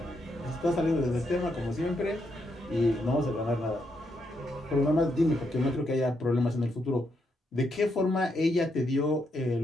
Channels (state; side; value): normal; both; correlation 0.79